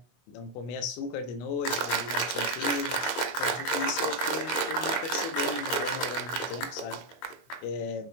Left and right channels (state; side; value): late; right; 24 ms